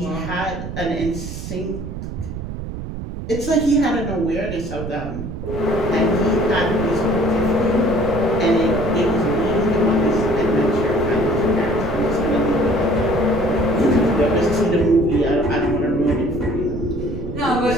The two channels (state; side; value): noise; right; rumble, 7 dB below the sound